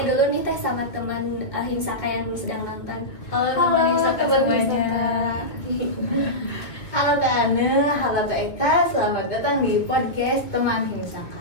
dulu nih Teh sama teman Himsaka yang sedang nonton. Halo teman Himsaka semuanya. Halo Teh Ane, halo Teh Eka, selamat datang di podcast teman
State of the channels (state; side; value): late; right; 1.9 ms